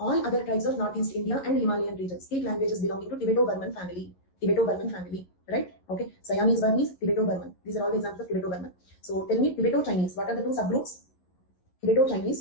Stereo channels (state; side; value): late; right; 11 ms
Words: other tribes of Northeast India and Himalayan regions speak languages belonging to Tibeto-Burman family, right? Okay. Siamese Burmese, Tibeto-Burman. These are all the examples of Tibeto-Burman. So tell me, Tibeto-Chinese, what are the two subgroups?